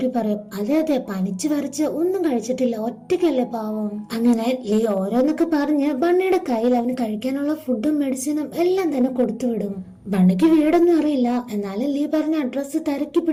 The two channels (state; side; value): identical; both; correlation 1.00